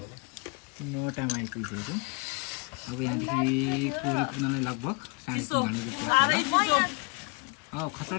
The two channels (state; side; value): quieter; right; 31.7 dB